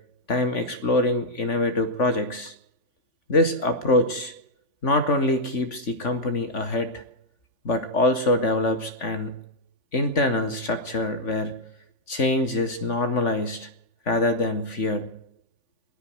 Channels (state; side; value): late; right; 3.5 ms